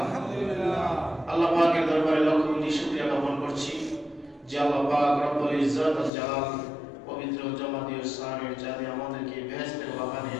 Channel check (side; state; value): right; drops out; at 6.1 s